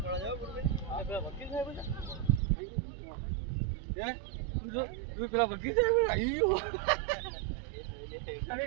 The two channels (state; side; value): drops out; left; at 2.4 s